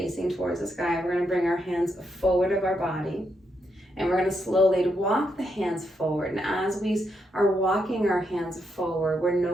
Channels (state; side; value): normal; both; correlation 0.80